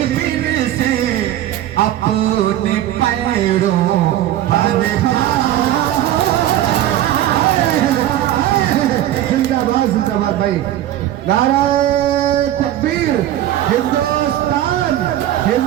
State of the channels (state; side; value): quieter; left; 12.8 dB